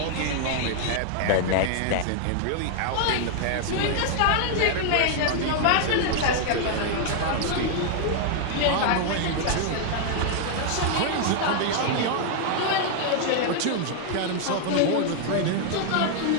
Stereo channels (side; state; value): both; different; correlation 0.00